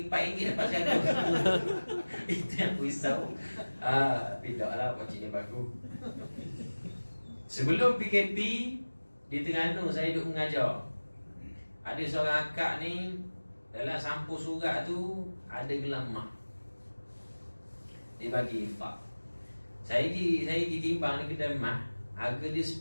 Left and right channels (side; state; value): both; inverted; correlation -1.00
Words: RM4 dapat saya. Itu yang aku risau. Tapi tak lah, pakcik ni bagus. Sebelum PKP di Terengganu saya duduk mengajar. Ada seorang akak ni, dalam sampul surat tu ada gelang emas. Dia bagi infak. Saya ditimbang di kedai emas, harga dia